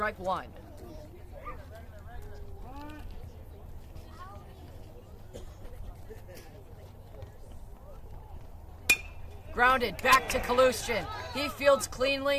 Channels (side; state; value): both; identical; correlation 1.00